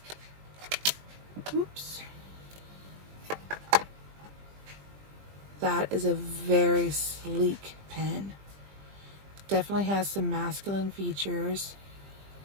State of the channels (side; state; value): left; late; 20 ms